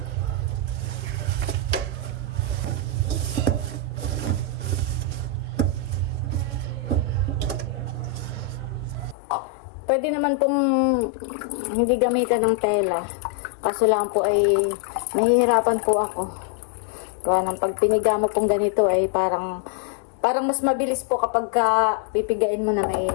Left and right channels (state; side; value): drops out; right; at 9.2 s